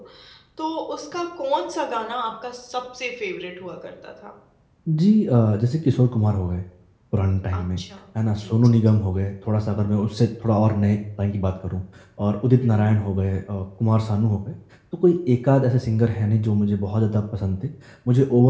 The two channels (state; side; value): identical; both; correlation 1.00